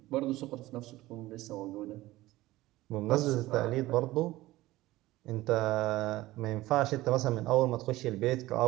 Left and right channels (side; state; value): left; quieter; 17.6 dB